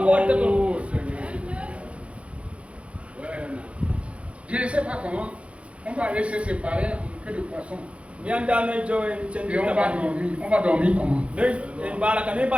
Je ne sais pas comment. On va laisser séparer un peu de poisson. Et on va dormir comment?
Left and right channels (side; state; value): left; late; 0.061 ms